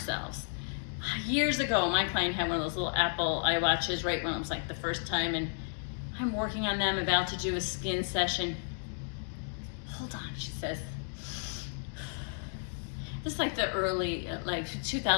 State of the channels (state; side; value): silent; right; digital silence